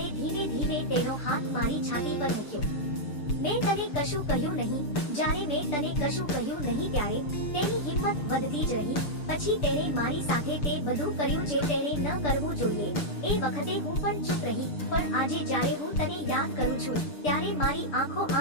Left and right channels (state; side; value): late; right; 6.8 ms